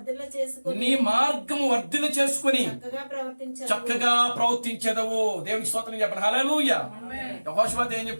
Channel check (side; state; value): both; inverted; correlation -1.00